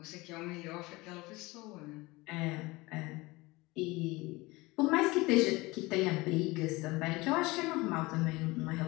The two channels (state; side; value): quieter; right; 22.1 dB